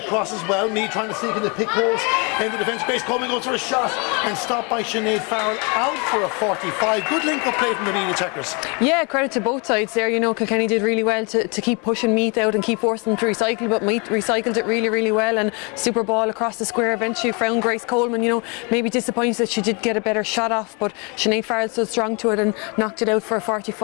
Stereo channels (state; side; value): quieter; right; 32.4 dB